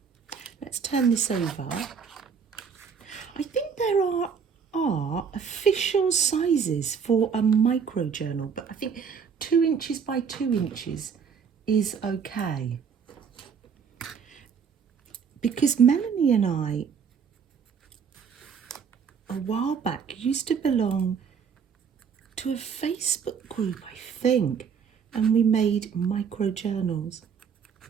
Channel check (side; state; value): left; quieter; 6.6 dB